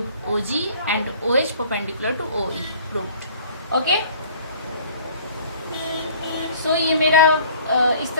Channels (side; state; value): both; inverted; correlation -0.51